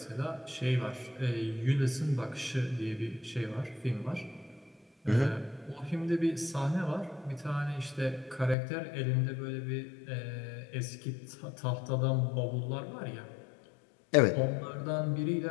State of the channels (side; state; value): right; drops out; at 8.6 s